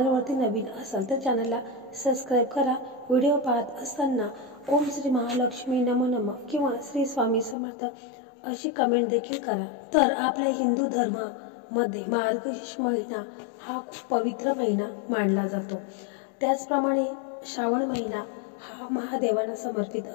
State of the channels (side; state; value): right; drops out; at 7.6 s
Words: नवीन असाल तर चॅनलला सबस्क्राईब करा। व्हिडिओ पाहत असताना ओम श्री महालक्ष्मी नमो नमः किंवा श्री स्वामी समर्थ अशी कमेंट देखील करा। तर आपल्या हिंदू धर्मामध्ये मार्गशीर्ष महिना हा खूप पवित्र महिना मानला जातो। त्याचप्रमाणे श्रावण महिना हा महादेवांना समर्पित